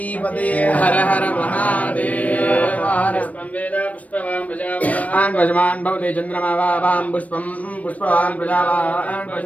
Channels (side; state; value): right; late; 0.069 ms